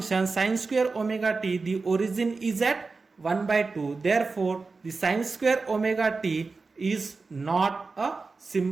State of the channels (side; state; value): left; quieter; 4.1 dB